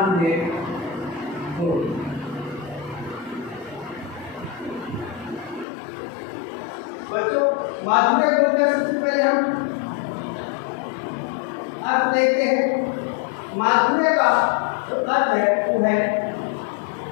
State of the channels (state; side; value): drops out; right; at 5.7 s